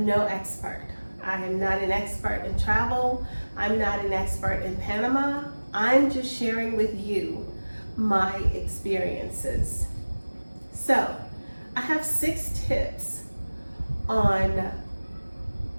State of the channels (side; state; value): both; inverted; correlation -1.00